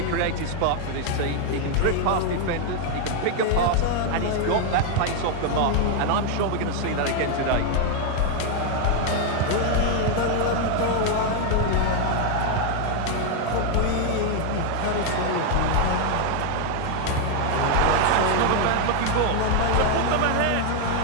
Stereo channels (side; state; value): both; different; correlation 0.00